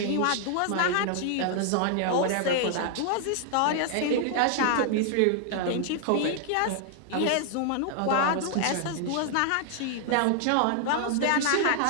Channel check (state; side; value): different; both; correlation 0.00